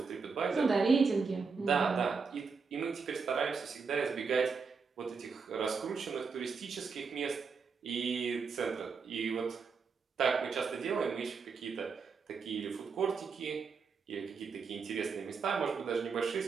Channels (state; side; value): quieter; left; 5.2 dB